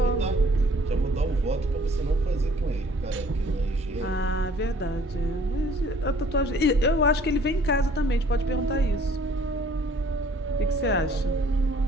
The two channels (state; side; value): normal; both; correlation 0.57